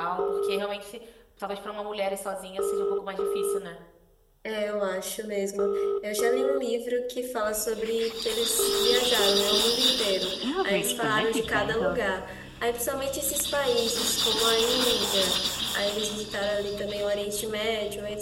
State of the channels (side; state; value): both; identical; correlation 1.00